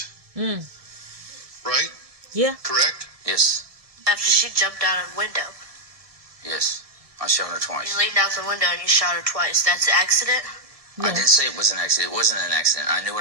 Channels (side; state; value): left; late; 1.6 ms